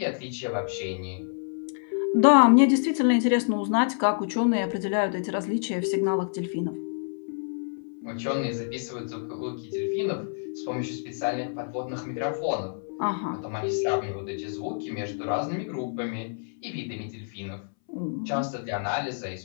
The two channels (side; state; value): right; silent; 60 dB below the other